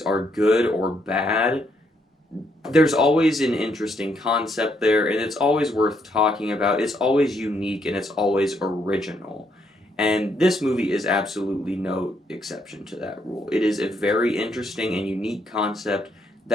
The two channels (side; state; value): both; normal; correlation 0.74